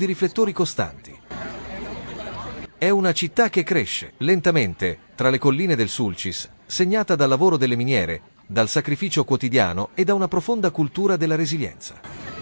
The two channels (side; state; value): both; inverted; correlation -1.00